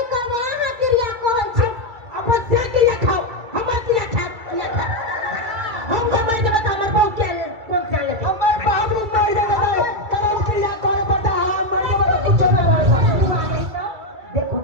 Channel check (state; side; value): late; left; 2.3 ms